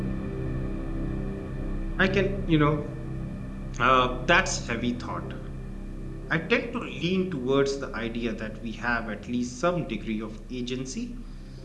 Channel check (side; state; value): both; identical; correlation 1.00